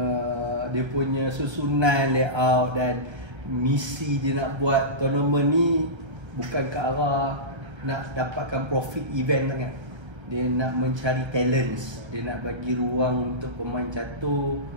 Dia punya susunan, layout dan misi dia nak buat tournament ni bukan ke arah nak dapatkan profit event sangat. Dia nak mencari talents, dia nak bagi ruang untuk pemain catur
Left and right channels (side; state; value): left; late; 1.3 ms